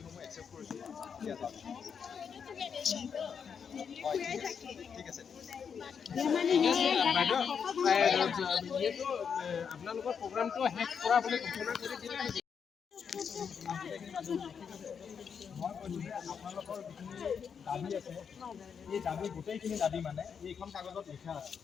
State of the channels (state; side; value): quieter; right; 6.8 dB